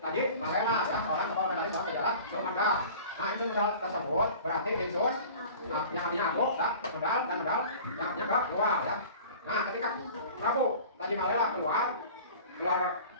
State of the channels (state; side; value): inverted; both; correlation -0.42